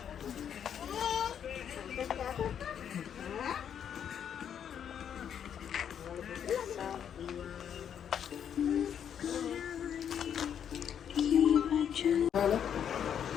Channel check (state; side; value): quieter; right; 8.7 dB